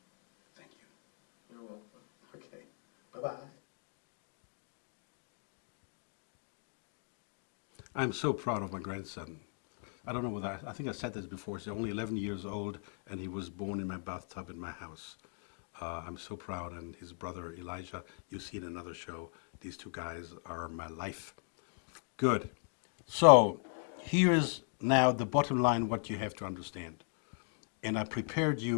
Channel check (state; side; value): silent; right; 53 dB below the other